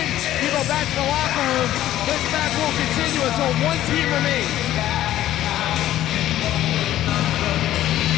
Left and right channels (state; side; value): quieter; right; 13.3 dB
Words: you go back to the locker room. This match will continue until one team remains.